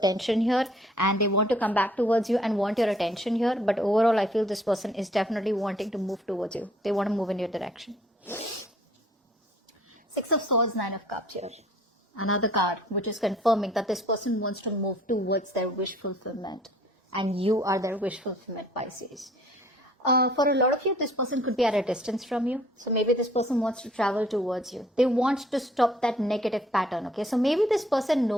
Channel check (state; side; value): normal; both; correlation 0.58